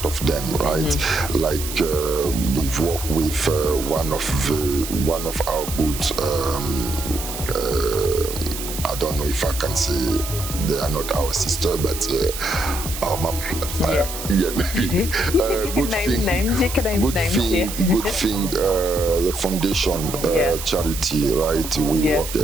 of them, right? Like we've worked with one of our good. I don't know if I can say they are not our sister, but our mom. Maybe. Good thing. Good thing. The foundation charity, right? We work.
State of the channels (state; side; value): noise; right; hiss, 8 dB below the sound